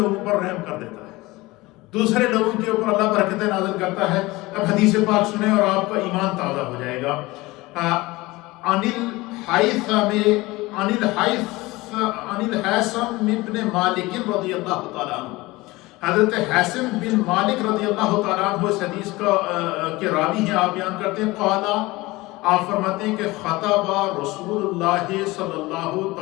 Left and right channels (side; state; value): right; quieter; 20.8 dB